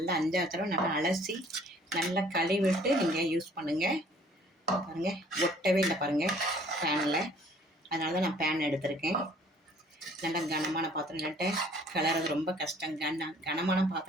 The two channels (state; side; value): normal; both; correlation 0.56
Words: 5 தடவை நல்லா அலசி நல்லா கழுவிட்டு நீங்கள் யூஸ் பண்ணுங்கள். பாருங்கள், ஒட்டவே இல்லை பாருங்கள் பேனில். அதனால தான் நான் பேன் எடுத்திருக்கேன். நல்லா கனமான பாத்திரம், இல்லாட்ட கலர்றது ரொம்ப கஷ்டம். கனமான